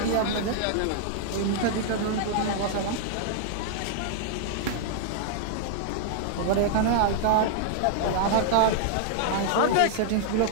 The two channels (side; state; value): both; different; correlation 0.00